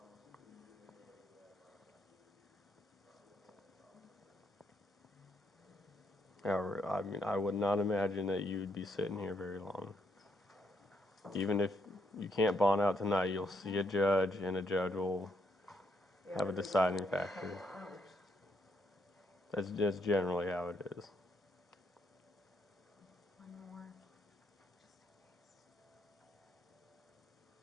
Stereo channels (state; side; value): normal; both; correlation 0.74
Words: However, I mean, I would not imagine that you would be sitting here very long. Even if you can't bond out tonight, you'll see a judge, and a judge will have a deciding factor. That's just generally how it is. One more. Just in case.